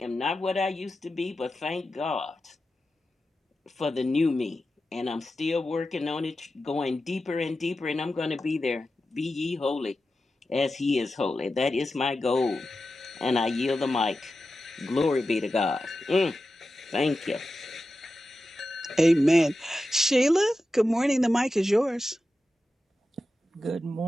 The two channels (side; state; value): both; normal; correlation 0.92